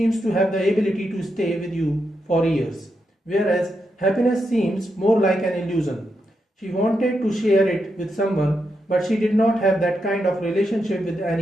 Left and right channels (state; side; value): normal; both; correlation 0.84